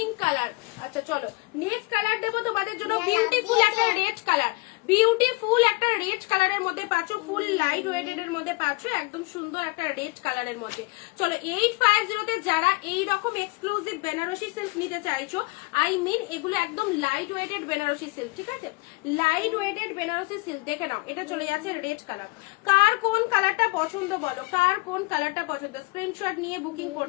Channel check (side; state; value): right; quieter; 25.4 dB